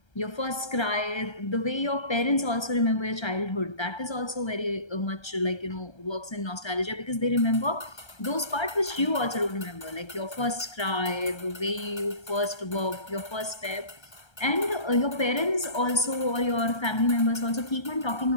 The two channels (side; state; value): right; late; 1.3 ms